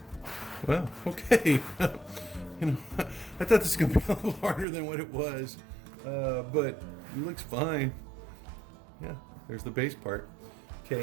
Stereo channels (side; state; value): left; drops out; at 4.7 s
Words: Well, okay. You know, I thought this was going to be a little harder than what it was, but it looks fine. Yeah, there's the base part.